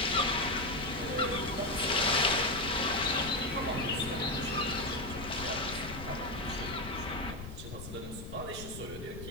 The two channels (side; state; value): left; noise; rumble, 10 dB below the sound